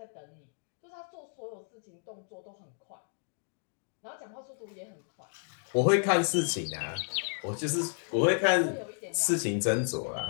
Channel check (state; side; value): silent; right; 56 dB below the other